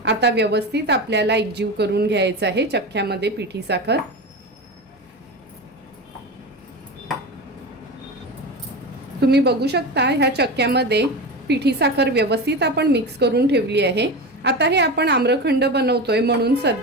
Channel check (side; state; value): both; normal; correlation 0.24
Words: आता व्यवस्थित आपल्याला एकजीव करून घ्यायचं आहे चक्क्यामध्ये पिठी साखर। तुम्ही बघू शकता ह्या चक्क्यामध्ये पिठी साखर व्यवस्थित आपण मिक्स करून ठेवली आहे। आता हे आपण आम्रखंड बनवतोय म्हणून